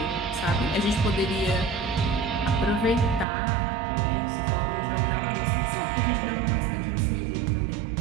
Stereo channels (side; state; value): left; drops out; at 3.2 s